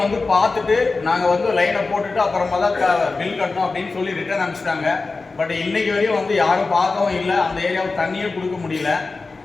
வந்து பார்த்துட்டு நாங்கள் வந்து லைனை போட்டுட்டு அப்புறமா தான் பில் கட்டணும் அப்படின்னு சொல்லி ரிட்டர்ன் அனுப்பிச்சிட்டாங்க. பட் இன்னைக்கு வரையும் வந்து யாரும் பார்க்கவும் இல்லை, அந்த ஏரியாவுக்கு தண்ணியும் கொடுக்க முடியல.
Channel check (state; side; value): quieter; right; 3.9 dB